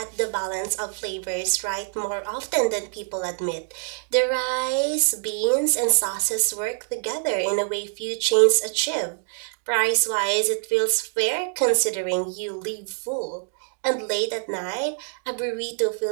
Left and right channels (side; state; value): left; silent; digital silence